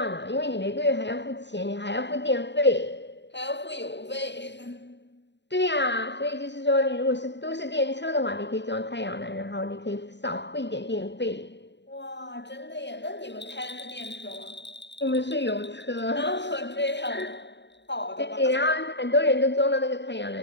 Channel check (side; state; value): right; late; 0.51 ms